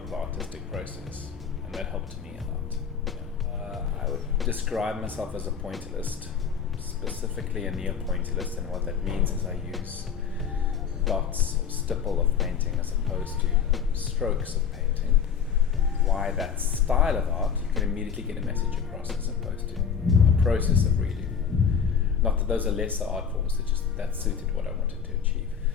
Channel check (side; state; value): right; quieter; 7.2 dB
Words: the artistic process, and that helped me a lot. I would describe myself as a pointillist, specifically a neo-pointillist, and what that means is I use dots or stipple of painting as opposed to strokes of painting. Why that style of art? You can immediately get a message across as opposed to a process of reading. Not that those are lesser art forms, it's just that suited what I wanted to achieve.